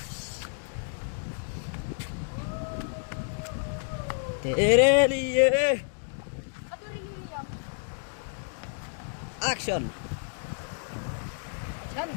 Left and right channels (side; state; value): right; silent; digital silence